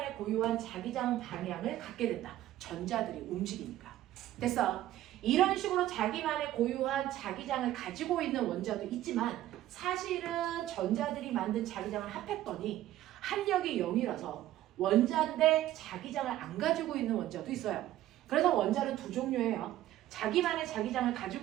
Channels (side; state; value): left; quieter; 14.0 dB